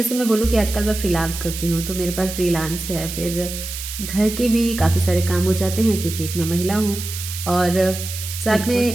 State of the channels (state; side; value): noise; right; hiss, 8 dB below the sound